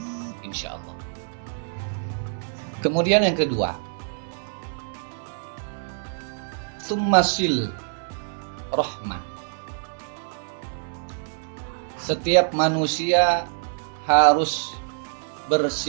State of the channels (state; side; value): silent; left; digital silence